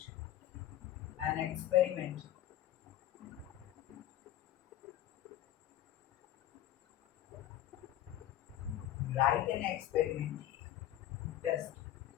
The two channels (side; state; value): right; quieter; 12.6 dB